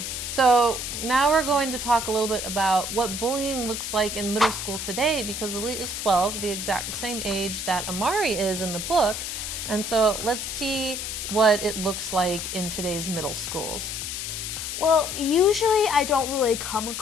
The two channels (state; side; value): noise; left; hiss, 5 dB below the sound